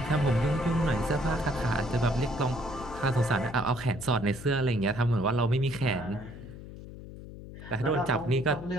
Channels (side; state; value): left; noise; hum, 14 dB below the sound